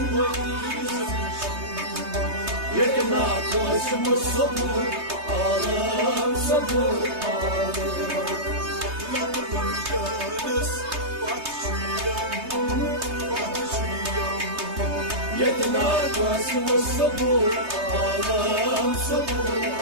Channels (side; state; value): left; late; 3.3 ms